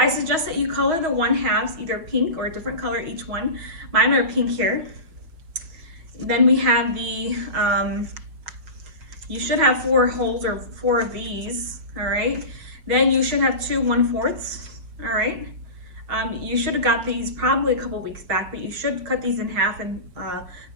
suggest that you color the 1/2 either pink or a different color each one. Mine are pink here. Then we have the you should have 4 holes or 4 of these. All right, then you should have 2 1/4. All right, you should have got these probably a couple weeks back, but you should cut these in half and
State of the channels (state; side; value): late; left; 6.3 ms